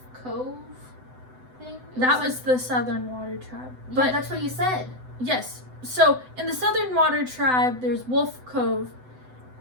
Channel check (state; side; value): late; left; 7.9 ms